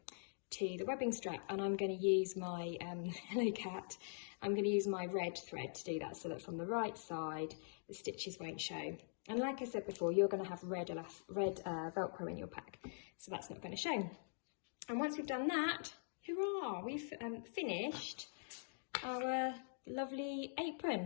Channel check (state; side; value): silent; right; digital silence